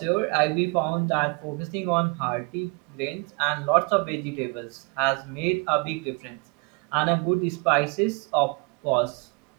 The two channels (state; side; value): quieter; left; 30.7 dB